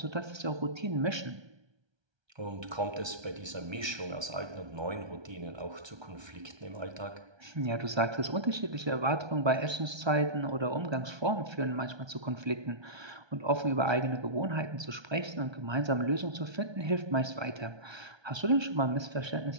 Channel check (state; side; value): late; left; 1.3 ms